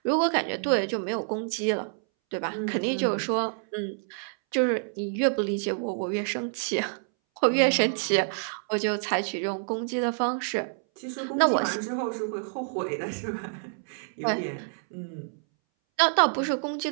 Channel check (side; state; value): left; silent; 60 dB below the other